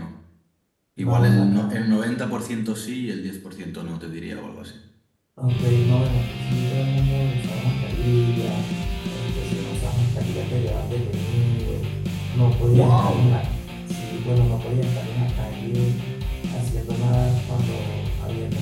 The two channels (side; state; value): both; identical; correlation 1.00